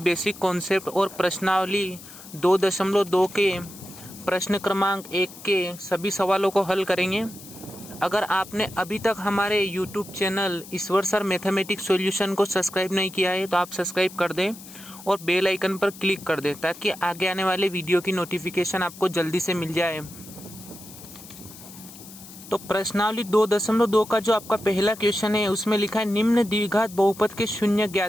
कॉन्सेप्ट और प्रश्नावली 2.2 के प्रश्न क्रमांक 1 के सभी सवालों को हल करेंगे। अगर आपने अभी तक हमारे यूट्यूब चैनल ईश्वर सर मैथमेटिक्स सॉल्यूशन को सब्सक्राइब नहीं किया है तो आप सब्सक्राइब कर दें और बेल आइकन पर क्लिक कर दें ताकि आगे आने वाले वीडियो की नोटिफिकेशन आपको जल्दी से मिल जाए। तो प्रश्नावली 2.2 का जो आपका पहला क्वेश्चन है उसमें लिखा है निम्न द्विघात बहुपद के शून्य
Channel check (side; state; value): left; noise; hiss, 17 dB below the sound